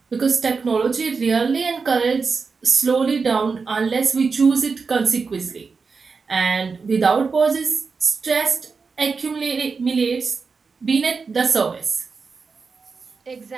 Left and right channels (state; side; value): quieter; left; 4.9 dB